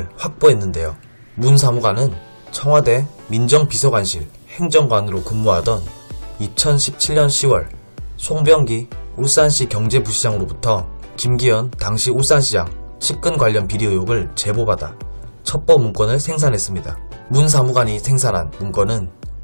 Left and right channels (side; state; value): both; inverted; correlation -1.00